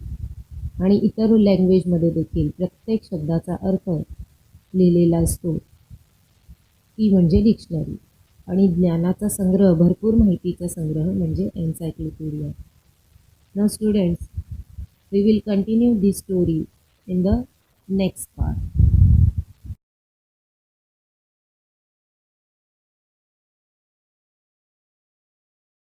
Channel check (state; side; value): identical; both; correlation 1.00